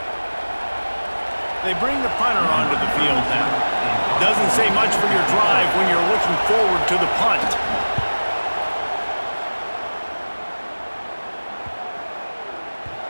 They bring the punter onto the field now. Doesn't say much for your drive when you're looking forward to the punt.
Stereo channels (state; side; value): inverted; both; correlation -1.00